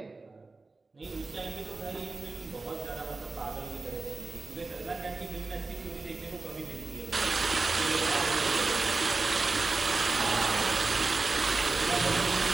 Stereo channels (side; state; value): left; quieter; 3.7 dB